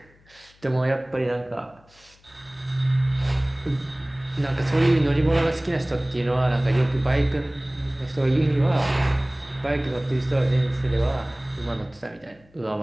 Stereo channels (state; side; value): noise; left; hum, 30 dB below the sound